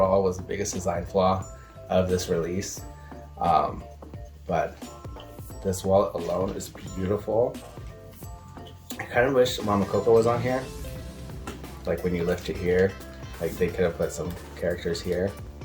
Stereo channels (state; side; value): identical; both; correlation 1.00